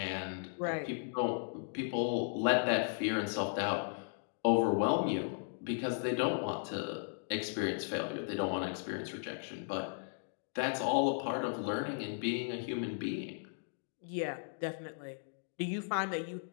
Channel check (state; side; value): silent; right; digital silence